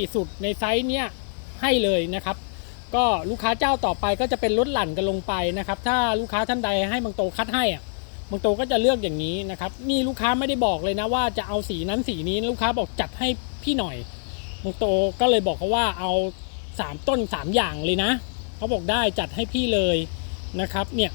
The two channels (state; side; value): silent; right; digital silence